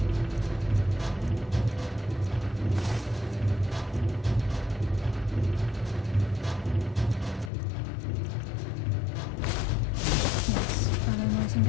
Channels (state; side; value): drops out; right; at 7.5 s